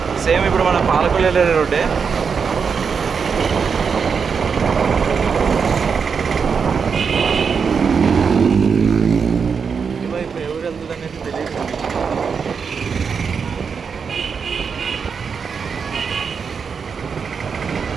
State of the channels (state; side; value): quieter; left; 6.0 dB